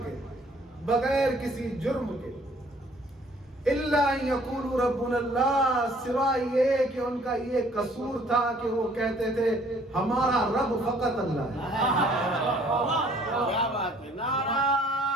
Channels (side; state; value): both; normal; correlation 0.58